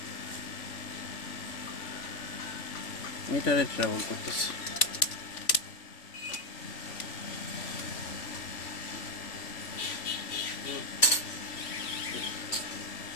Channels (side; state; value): right; late; 3.5 ms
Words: মিটারে ট্রাভেল করতেছে।